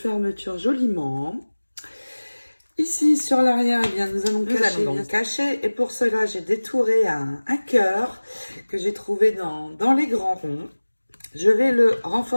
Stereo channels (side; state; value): both; inverted; correlation -1.00